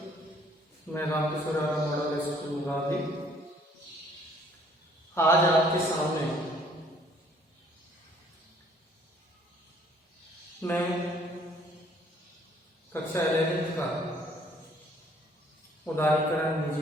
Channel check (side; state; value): both; normal; correlation 0.60